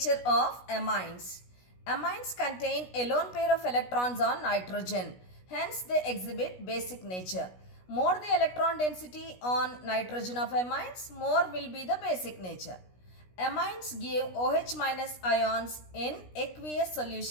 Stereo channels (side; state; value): right; late; 16 ms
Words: of amines. Amines contain a lone pair of electrons on nitrogen. Hence, they exhibit basic nature. More the electron density on nitrogen of amines, more will be the basic nature. Amines give OH minus ions in aqueous